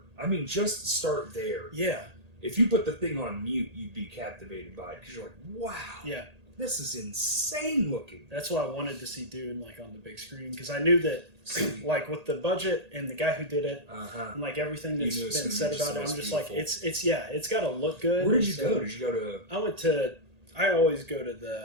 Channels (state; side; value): late; left; 1.8 ms